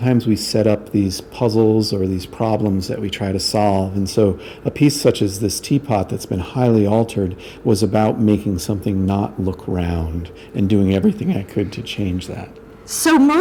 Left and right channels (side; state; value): both; identical; correlation 1.00